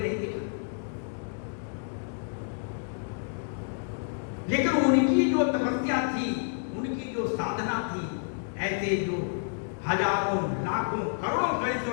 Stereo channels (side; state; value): right; silent; digital silence